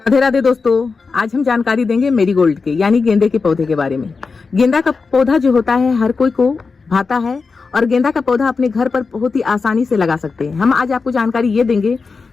राधे राधे दोस्तों, आज हम जानकारी देंगे मेरीगोल्ड के यानी गेंदे के पौधे के बारे में। गेंदा का पौधा जो होता है हर कोई को भाता है और गेंदा का पौधा अपने घर पर बहुत ही आसानी से लगा सकते हैं। हम आज आपको जानकारी ये देंगे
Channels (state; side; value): quieter; right; 4.6 dB